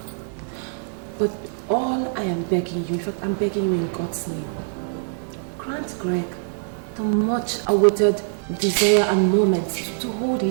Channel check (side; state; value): left; silent; digital silence